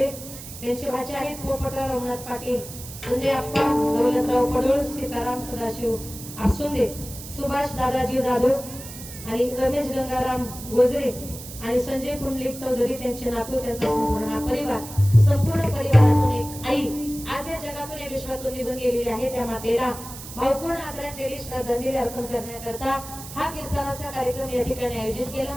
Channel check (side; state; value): right; noise; hiss, 13 dB below the sound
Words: त्यांचे भाचे आहेत पोपटराव रघुनाथ पाटील, संजय आप्पा दौलतराव पडोळ, सीताराम सदाशिव आसुंदे, सुभाष दादाजी जाधव आणि रमेश गंगाराम गोजरे आणि संजय पुंडलिक चौधरी त्यांचे नातू त्यांचा संपूर्ण हा परिवार संपूर्ण परिवारातून एक आई आज या जगातून या विश्वातून निघून गेलेली आहे. त्या मातेला भावपूर्ण आदरांजली श्रद्धांजली अर्पण करण्याकरता हा कीर्तनाचा कार्यक्रम या ठिकाणी आयोजित केला.